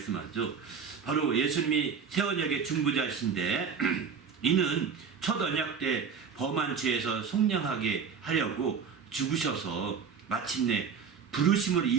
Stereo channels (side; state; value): left; quieter; 6.3 dB